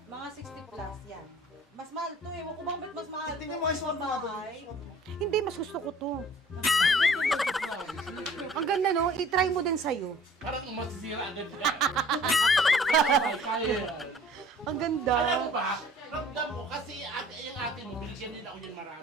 Mga 60 plus yan. Mas mahal to eh. Kung bakit mas mahal to? Tingnan mo yung suot mo nga to. Hindi, mas gusto ko to. Ang ganda, no? I-try mo din sa'yo. Parang masisira agad ka. Kaya yan. Ang ganda. Alam mo ba, ramdam mo, kasi yung ate mo, binigyan din ako yan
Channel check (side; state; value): both; normal; correlation 0.51